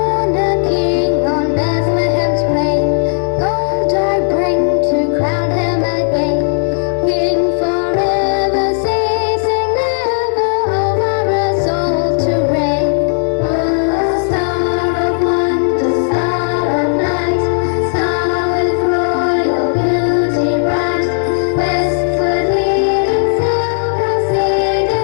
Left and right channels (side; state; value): right; silent; digital silence